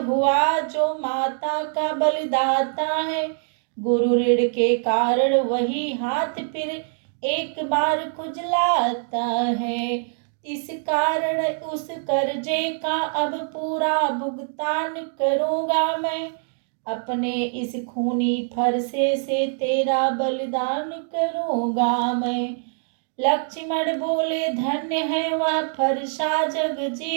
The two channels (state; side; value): silent; left; 63 dB below the other